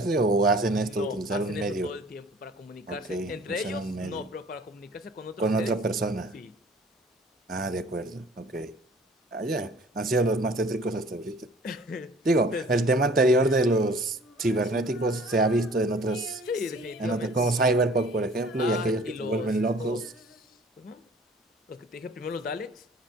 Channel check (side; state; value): both; normal; correlation 0.50